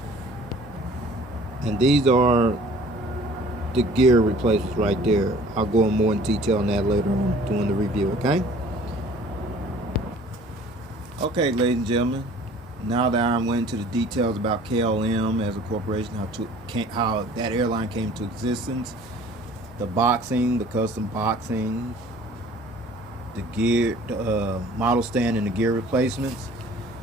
And these are the gear replacements right there. I'll go in more in detail on that later on during the review, okay? Okay, ladies and gentlemen, now that I went into the details about KLM as a corporation, how that airline came to existence, the boxing, the custom boxing, the gear, the model stand and the gear replacements,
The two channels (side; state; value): both; normal; correlation 0.50